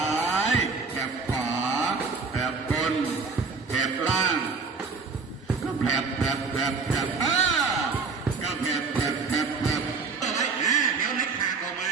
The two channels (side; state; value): left; quieter; 4.8 dB